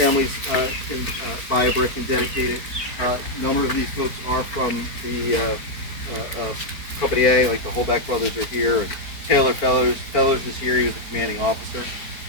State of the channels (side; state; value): right; late; 4.5 ms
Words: can buy a brick and dedicate it. A number of these folks are from the Company A, like the Holback brothers are here, and Taylor Fellers is here. He was a commanding officer.